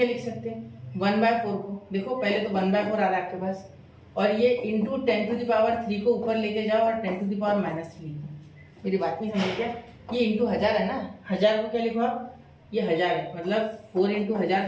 लिख सकते हैं 1/4 को, देखो पहले तो 1/4 आ रहा है आपके पास, और ये इंटू 10⁻³ को ऊपर लेके जाओ और 10⁻³ लिखो, मेरी बात नहीं समझ क्या, ये इंटू 1000 है ना, 1000 को क्या लिखो आप, ये 1000 है, मतलब 4 इंटू 1000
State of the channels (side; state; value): both; identical; correlation 1.00